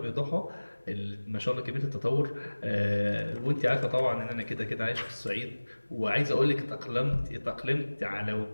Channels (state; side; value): inverted; both; correlation -1.00